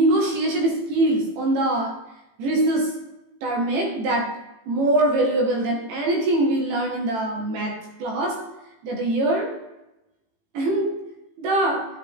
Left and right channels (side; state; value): left; late; 18 ms